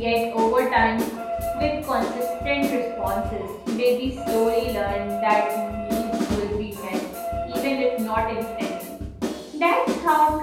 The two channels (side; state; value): both; identical; correlation 1.00